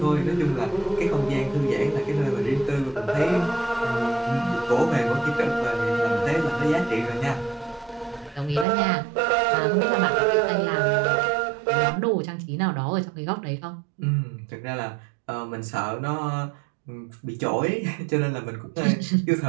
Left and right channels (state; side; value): drops out; left; at 8.7 s